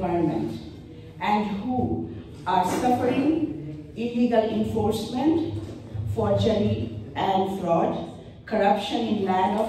and who are suffering illegal enforcement, forgery and fraud, corruption in land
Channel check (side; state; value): both; identical; correlation 1.00